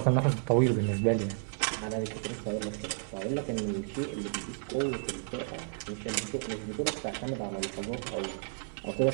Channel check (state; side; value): silent; left; 56 dB below the other